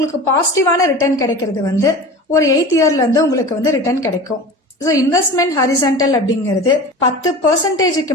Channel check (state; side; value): normal; both; correlation 0.34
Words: பாசிட்டிவான ரிட்டர்ன் கிடைக்கிறது வந்து ஒரு 8 இயர்ல இருந்து உங்களுக்கு வந்து ரிட்டர்ன் கிடைக்கும். ஸோ இன்வெஸ்ட்மெண்ட் ஹாரிசான்டல் அப்படிங்கிறது